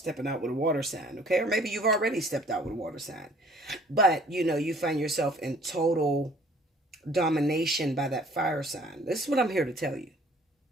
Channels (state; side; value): normal; both; correlation 0.55